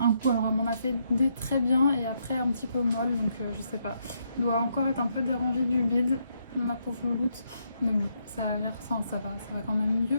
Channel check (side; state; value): both; inverted; correlation -0.76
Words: coup, alors elle m'en a fait des très bien et après un petit peu molle, donc je sais pas, elle doit encore être un peu dérangée du bide, ma pauvre louloute, mais bon, ça a l'air, ça va quand même